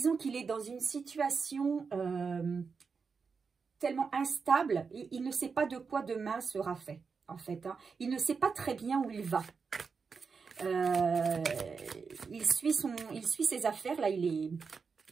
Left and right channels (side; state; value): left; quieter; 5.3 dB